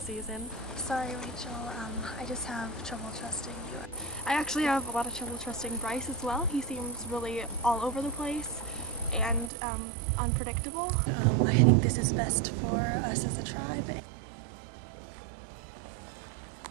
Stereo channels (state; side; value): drops out; left; at 9.5 s